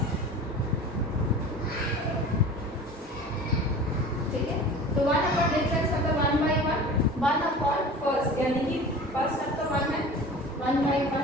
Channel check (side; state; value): both; normal; correlation 0.38